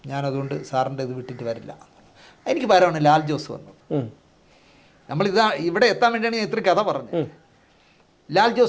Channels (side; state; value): both; identical; correlation 1.00